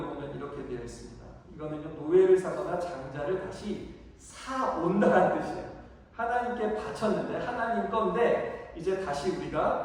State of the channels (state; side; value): identical; both; correlation 1.00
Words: 보면 이렇게 되어 있습니다. 이거는요, 노예를 사거나 장자를 다시 사온다는 뜻이에요. 하나님께 바쳤는데 하나님 건데 이제 다시